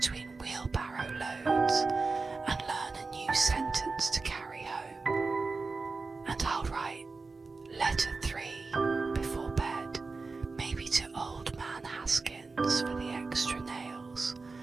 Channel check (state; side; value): quieter; left; 4.0 dB